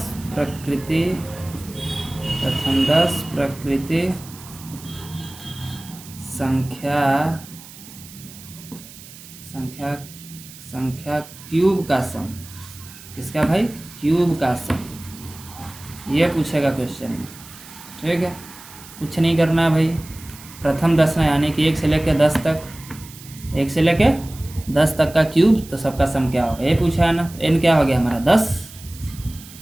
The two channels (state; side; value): noise; right; hiss, 18 dB below the sound